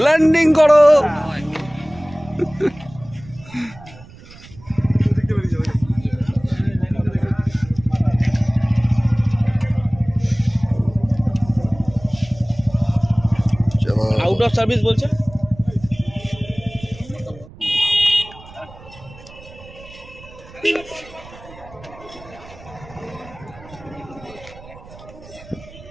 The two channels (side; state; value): right; noise; rumble, 20 dB below the sound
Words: ল্যান্ডিং করো। আউট অফ সার্ভিস বলছে।